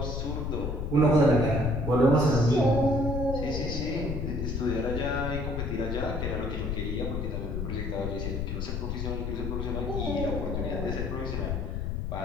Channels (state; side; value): noise; left; rumble, 2 dB below the sound